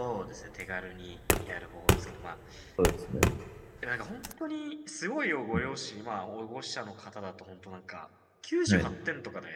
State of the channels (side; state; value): both; identical; correlation 1.00